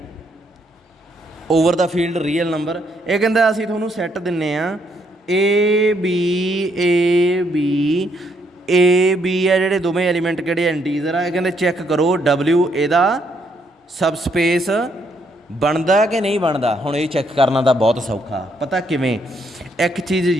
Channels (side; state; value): both; normal; correlation 0.73